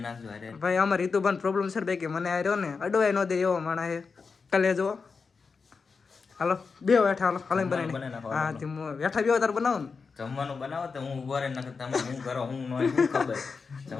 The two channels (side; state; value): right; quieter; 5.0 dB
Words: નાખજો અરે ભાઈ અમારે રીતુભાન પ્રોબ્લેમ છે ભાઈ કે મને આ રહ્યો ને અડવાય ન દે એવો માણા હે કલે જો હાલો બે બેઠા હાલો હાલો બનાવી હા તે બેઠા બે તાર બનાવો ને જમવાનું બનાવો તો હું ઉભો રહી નાખું તમે હું કરો હું ન શું ખબર